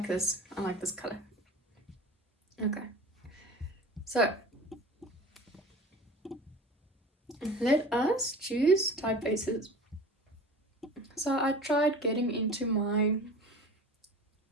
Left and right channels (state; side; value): normal; both; correlation 0.38